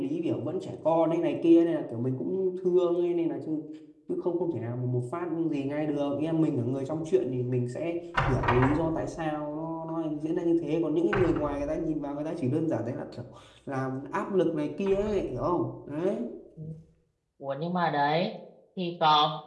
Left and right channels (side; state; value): both; identical; correlation 1.00